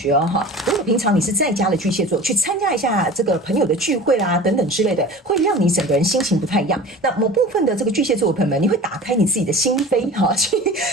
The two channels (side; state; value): both; normal; correlation 0.38